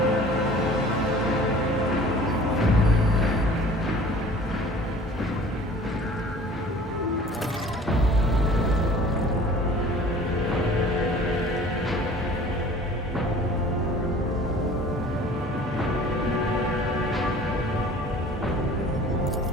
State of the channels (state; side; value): normal; both; correlation 0.48